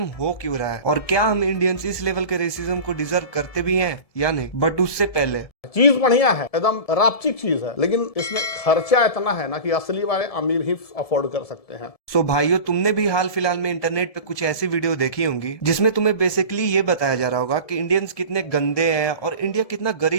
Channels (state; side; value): late; right; 1.7 ms